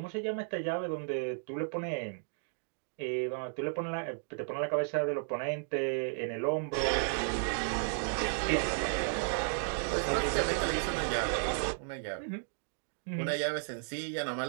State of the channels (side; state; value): left; silent; digital silence